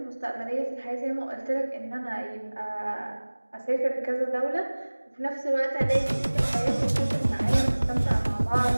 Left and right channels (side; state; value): both; inverted; correlation -1.00